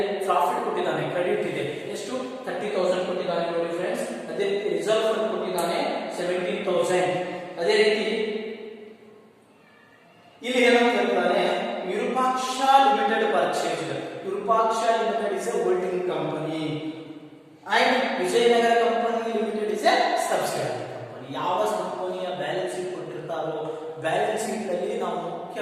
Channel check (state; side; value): identical; both; correlation 1.00